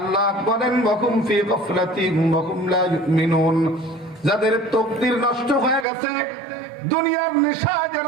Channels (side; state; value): left; drops out; at 5.9 s